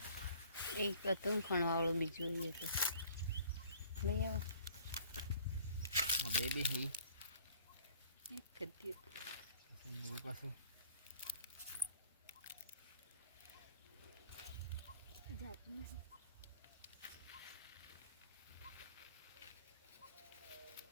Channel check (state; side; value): inverted; both; correlation -0.53